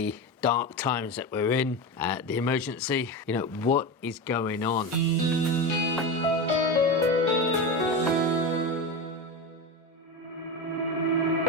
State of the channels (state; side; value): normal; both; correlation 0.20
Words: dark times that we're in, the emergency, what is going on.